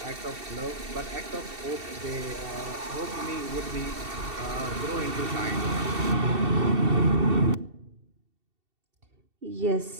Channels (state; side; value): late; left; 2.7 ms